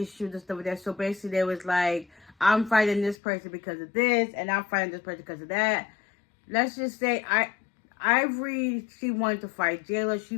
the stuff like that. So basically, they was like, I'm fighting this person because of this, and I'm fighting this person because of that. Let's just say, Ivory, she wanted to fight Jayla. She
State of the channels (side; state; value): right; drops out; at 3.2 s